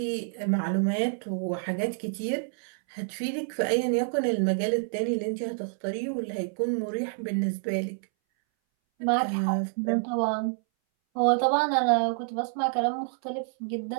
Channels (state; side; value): silent; left; 59 dB below the other